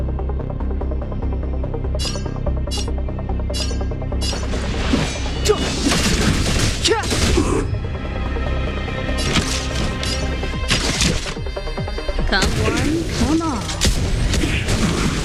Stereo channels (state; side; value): identical; both; correlation 1.00